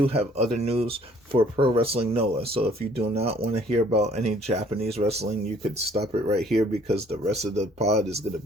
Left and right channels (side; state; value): both; normal; correlation 0.59